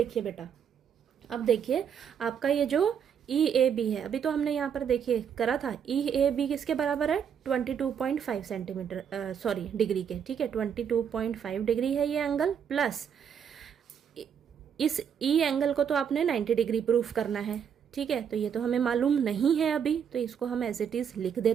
बेटा, अब देखिए आपका ये जो ई ए बी है, अभी तो हमने यहाँ पर देखिए करा था, ई ए बी किसके बराबर है 22.5 सेंटीमीटर सॉरी डिग्री के, ठीक है। 22.5 डिग्री है ये एंगल, प्लस इस ई एंगल को तो आपने 90 डिग्री प्रूफ करना है, ठीक है। तो ये तो हमें मालूम नहीं है अभी, तो इसको हम एज इट इज लिख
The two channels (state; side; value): quieter; left; 7.9 dB